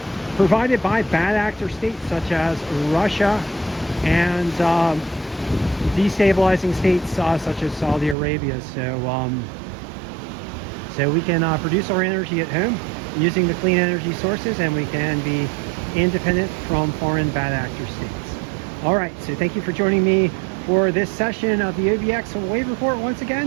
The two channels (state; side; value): drops out; left; at 8.2 s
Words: provided by bad actor states such as Russia and destabilizing states such as Saudi Arabia. So we can produce our energy at home using the clean energy sources, and we can be independent from foreign bad actor states. All right, so thank you for joining me for this session of the OBX Wave Report once